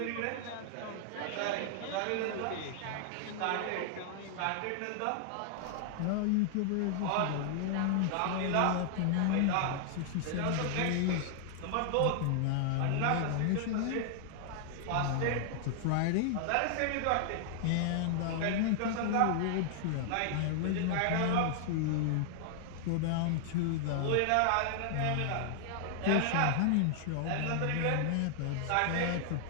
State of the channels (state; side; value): different; both; correlation -0.01